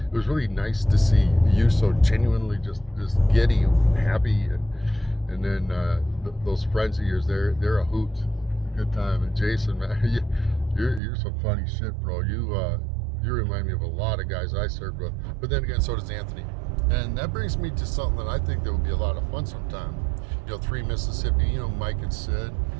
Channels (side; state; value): left; drops out; at 11.0 s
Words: was really nice to see you so genuinely just giddy and happy, and then those friends of yours, they're a hoot, good time. And Jason, man, you're some funny shit, bro. You remind me of a lot of guys I served with, but then again, so does Anthony. And that brings me to something that I think that would be a lot of fun sometime. 3 Mississippi, Mike and Sid.